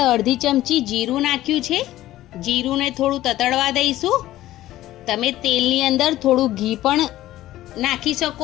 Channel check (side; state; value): right; quieter; 14.9 dB